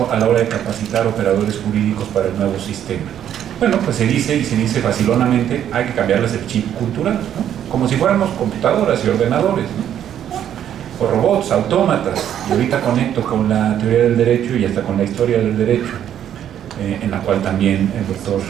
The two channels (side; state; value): left; quieter; 10.2 dB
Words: a la hora de capacitar operadores jurídicos para el nuevo sistema? Bueno, pues se dice, y se dice facilonamente, hay que cambiarles el chip cultural, ¿no? Como si fuéramos computadoras y ordenadores, ¿no? O robots, autómatas, y ahorita conecto con la teoría del derecho y hasta con la historia del derecho, en la cual también el doctor